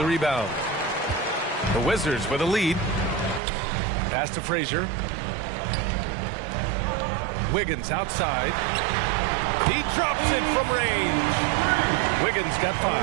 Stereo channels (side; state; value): left; drops out; at 3.4 s